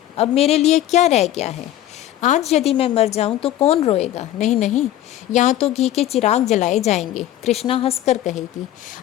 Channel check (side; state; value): right; quieter; 12.9 dB